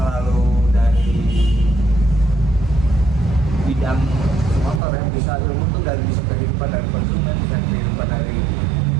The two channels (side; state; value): left; drops out; at 4.8 s